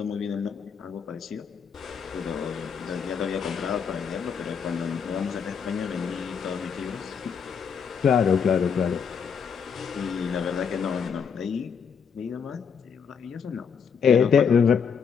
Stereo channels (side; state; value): right; quieter; 6.6 dB